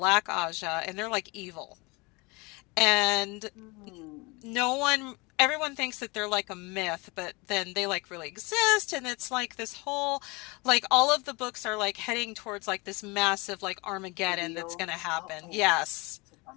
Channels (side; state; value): right; quieter; 26.4 dB